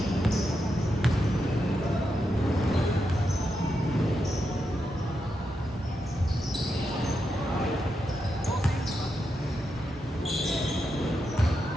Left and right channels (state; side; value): normal; both; correlation 0.85